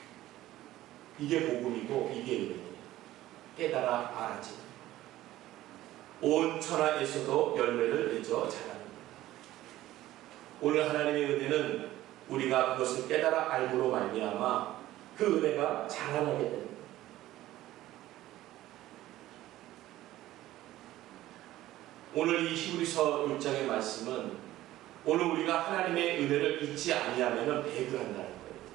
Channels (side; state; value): left; quieter; 15.2 dB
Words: 이게 복음이고 이게 은혜예요. 깨달아 알아지. 온 천하에서도 열매를 맺어 자라는 겁니다. 오늘 하나님의 은혜는 우리가 그것을 깨달아 알므로 말미암아 그 은혜가 자라나게 됩니다. 오늘 이 히브리서 6장의 말씀은 오늘 우리가 하나님의 은혜를 잊지 아니하면 배교한다는 거예요.